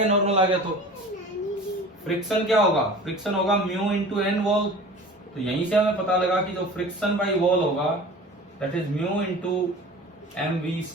नॉर्मल आ गया। तो फ्रिक्शन क्या होगा, फ्रिक्शन होगा म्यू इंटू एन वॉल, तो यहीं से हमें पता लगा कि जो फ्रिक्शन बाई वॉल होगा that is mu into M V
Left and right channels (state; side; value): normal; both; correlation 0.41